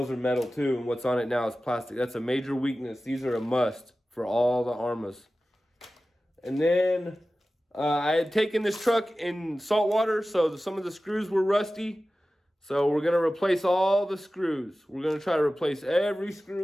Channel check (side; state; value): both; normal; correlation 0.95